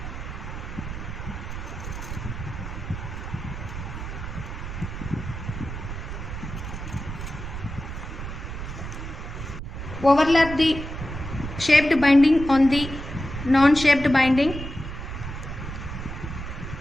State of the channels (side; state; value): right; noise; rumble, 7 dB below the sound